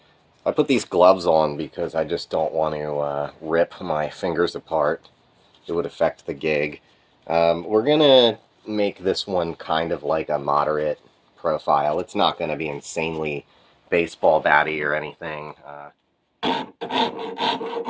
I put these gloves on because I just don't want to rip my fingers apart. It would affect the gig. We're gonna make this one kind of like a moderate profile. It's not gonna be insanely baseball batty or anything.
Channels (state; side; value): identical; both; correlation 1.00